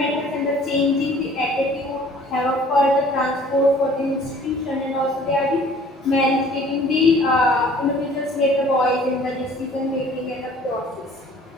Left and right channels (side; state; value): both; normal; correlation 0.52